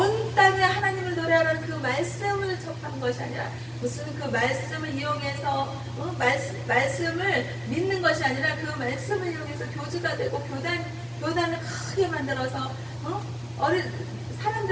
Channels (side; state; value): both; identical; correlation 1.00